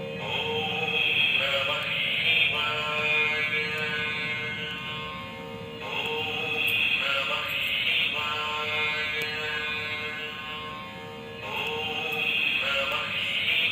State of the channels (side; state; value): both; identical; correlation 1.00